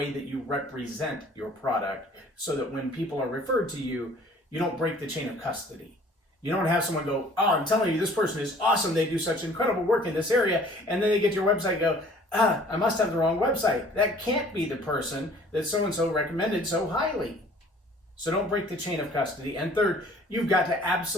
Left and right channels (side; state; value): both; normal; correlation 0.53